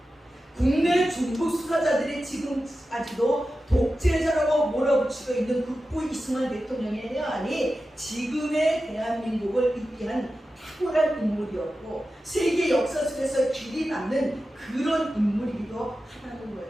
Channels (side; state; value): both; normal; correlation 0.93